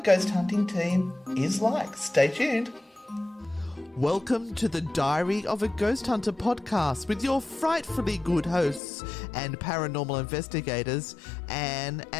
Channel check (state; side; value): drops out; right; at 8.8 s